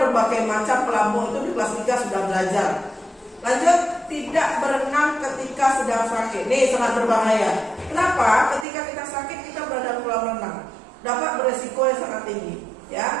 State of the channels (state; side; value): drops out; left; at 8.7 s